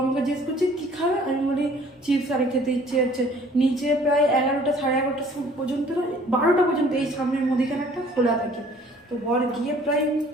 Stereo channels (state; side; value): normal; both; correlation 0.55